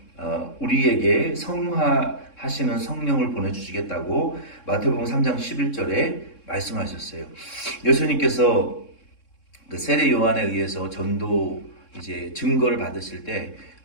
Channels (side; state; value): right; late; 3.7 ms